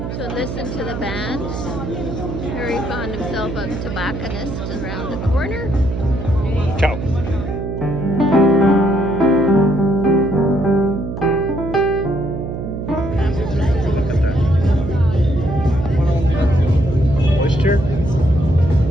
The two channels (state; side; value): noise; right; hum, 6 dB below the sound